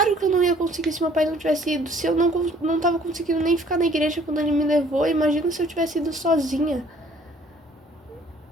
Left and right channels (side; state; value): both; normal; correlation 0.57